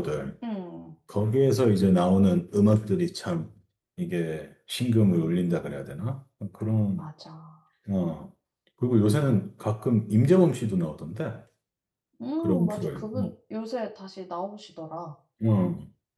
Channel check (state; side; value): identical; both; correlation 1.00